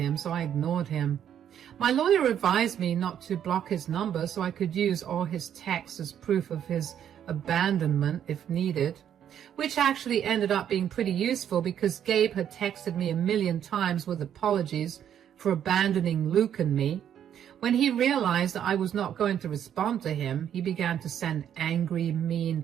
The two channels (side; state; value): left; quieter; 9.6 dB